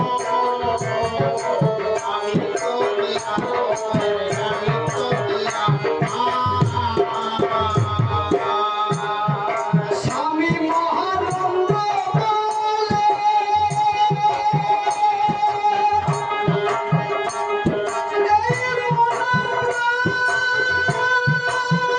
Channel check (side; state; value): both; identical; correlation 1.00